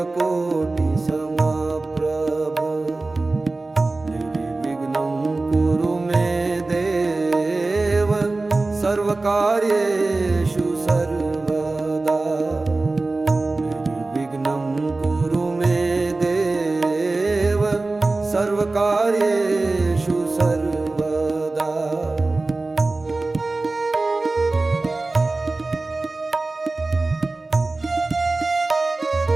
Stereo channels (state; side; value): quieter; left; 3.3 dB